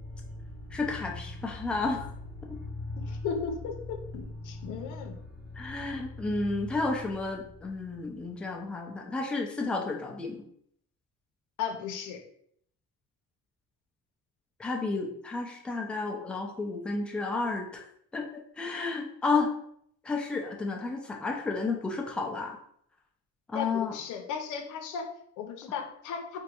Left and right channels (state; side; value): quieter; right; 3.5 dB